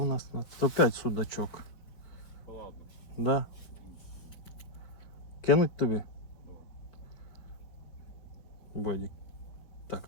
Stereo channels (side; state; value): right; late; 4.4 ms